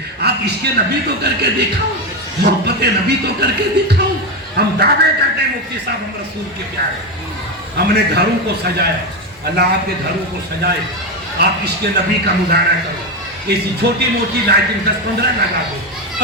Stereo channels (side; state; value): both; normal; correlation 0.13